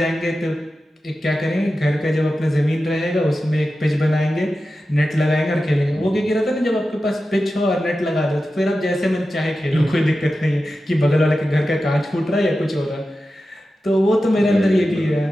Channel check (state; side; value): normal; both; correlation 0.92